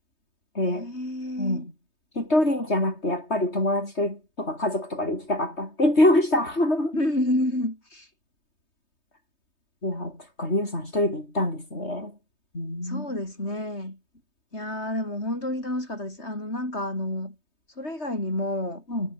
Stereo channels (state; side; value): late; right; 3.2 ms